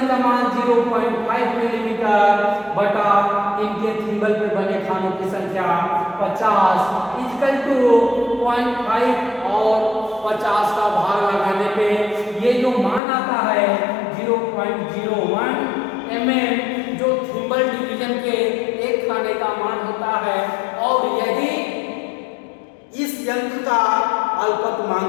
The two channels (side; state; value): right; drops out; at 13.0 s